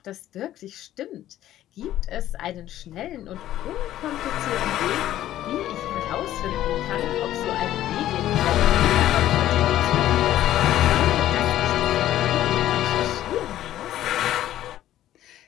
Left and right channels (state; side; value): quieter; right; 13.1 dB